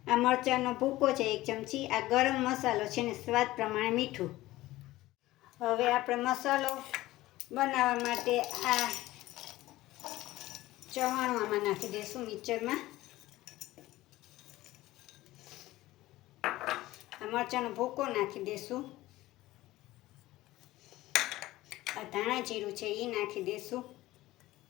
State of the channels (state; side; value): quieter; right; 17.1 dB